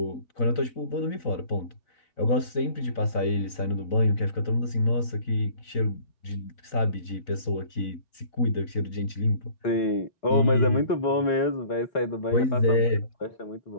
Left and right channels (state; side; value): late; right; 3.9 ms